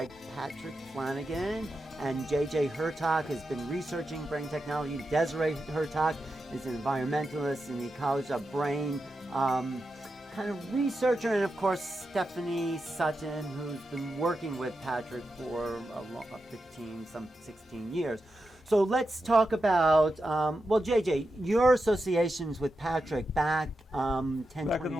Patrick Flanagan and J.J. Hurtak has been researching brain technology. Desiree Hurtak is an environmentalist in the College of Brain kind of researcher, and of course Stephanie Sutton, who's been working with Patrick for 16 years. So let's talk about, well, JJ, your associations with Patrick back 10, Back 20 in the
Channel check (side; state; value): both; normal; correlation 0.89